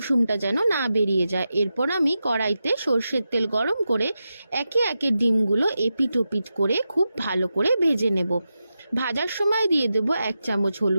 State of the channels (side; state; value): both; inverted; correlation -0.90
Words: যেন না বেরিয়ে যায়। এরপর আমি কড়াইতে সর্ষের তেল গরম করে একে একে ডিমগুলো এপিট ওপিট করে খুব ভালো করে ভেজে নেব। ভাজার সময় দিয়ে দেব 1 চামচ